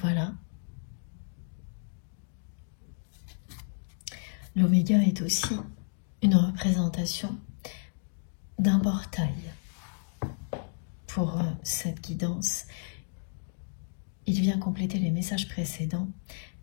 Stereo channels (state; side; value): silent; right; digital silence